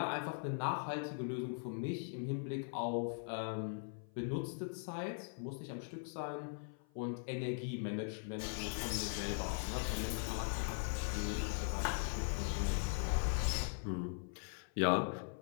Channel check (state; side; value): silent; right; 51 dB below the other